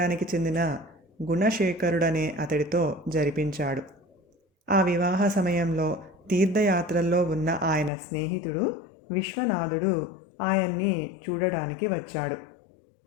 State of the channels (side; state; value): right; drops out; at 7.9 s